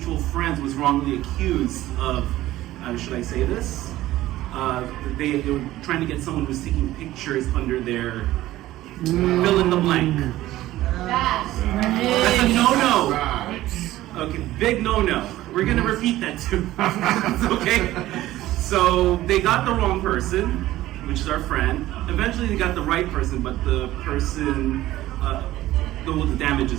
friends was wrongly accused of, should I say this? They were trying to get someone who was taking pictures under their fill in the blank. That's a no-no. Okay, big no-no. We're gonna repeat that too. Okay? So they got the wrong person, which is our friend. Eventually they got the right person, but the person, the damage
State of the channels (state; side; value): quieter; left; 15.5 dB